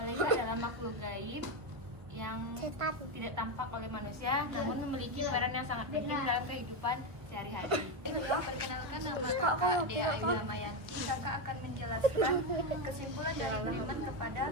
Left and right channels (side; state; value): left; late; 1.3 ms